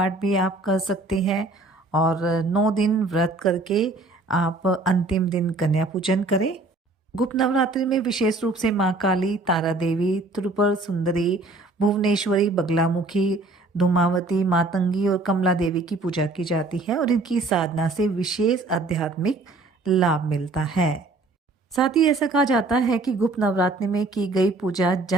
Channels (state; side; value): quieter; left; 3.1 dB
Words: भी आप कर सकते हैं और 9 दिन व्रत करके आप अंतिम दिन कन्या पूजन करें। गुप्त नवरात्रि में विशेष रूप से माँ काली, तारा देवी, त्रिपुर सुंदरी, भुवनेश्वरी, बगलामुखी, धूमावती, मातंगी और कमला देवी की पूजा की जाती है और इनकी साधना से विशेष आध्यात्मिक लाभ मिलता है। साथ ही ऐसा कहा जाता है कि गुप्त नवरात्रि में की गई पूजा